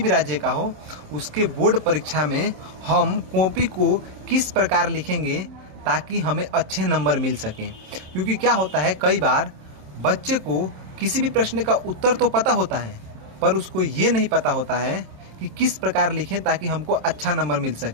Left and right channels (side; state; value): left; late; 27 ms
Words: राज्य का हो, उसके बोर्ड परीक्षा में हम कॉपी को किस प्रकार लिखेंगे ताकि हमें अच्छे नंबर मिल सकें। क्योंकि क्या होता है, कई बार बच्चे को किसी भी प्रश्न का उत्तर तो पता होता है पर उसको ये नहीं पता होता है कि किस प्रकार लिखें ताकि हमको अच्छा नंबर मिल